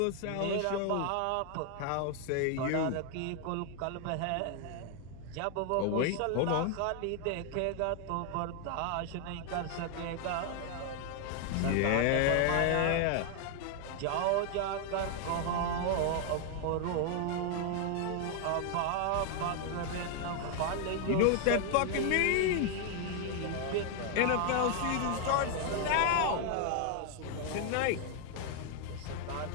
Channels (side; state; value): both; different; correlation 0.00